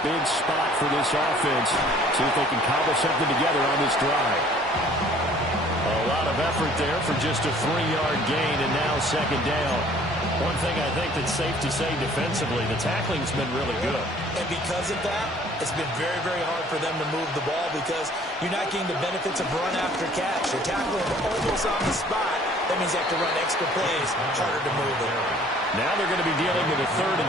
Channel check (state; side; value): normal; both; correlation 0.55